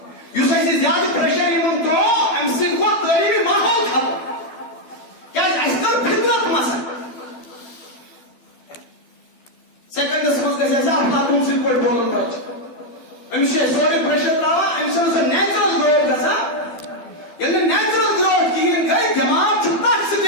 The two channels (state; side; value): late; right; 12 ms